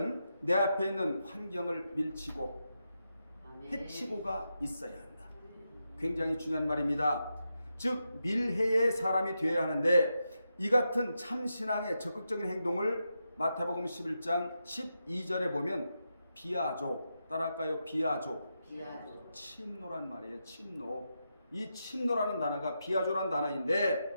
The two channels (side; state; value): both; inverted; correlation -0.86